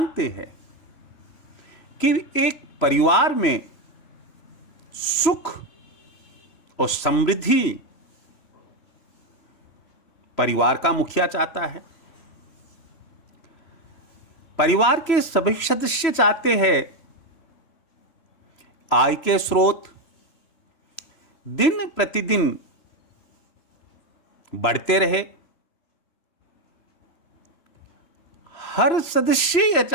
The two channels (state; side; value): late; right; 3.0 ms